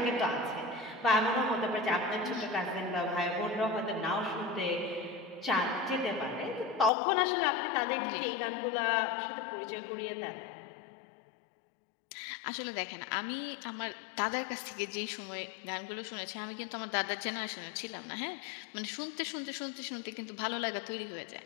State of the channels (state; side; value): drops out; right; at 6.9 s